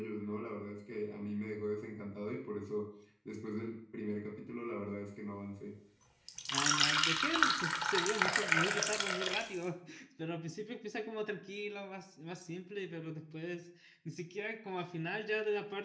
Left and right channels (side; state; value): both; identical; correlation 1.00